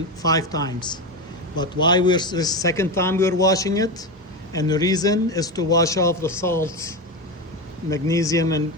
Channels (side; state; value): both; normal; correlation 0.17